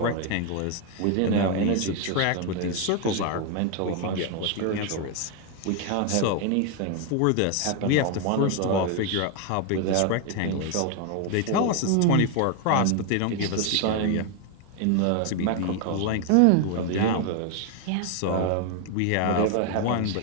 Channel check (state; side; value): different; both; correlation 0.01